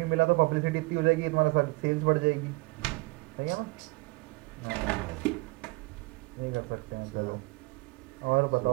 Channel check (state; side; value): quieter; left; 24.7 dB